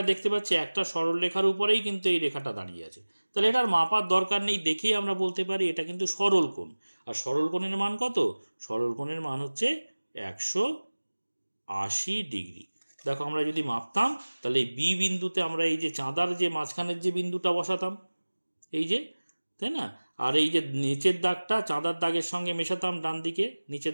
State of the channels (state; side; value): inverted; both; correlation -1.00